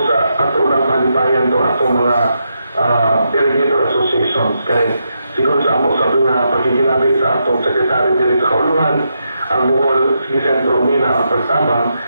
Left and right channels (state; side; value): inverted; both; correlation -0.83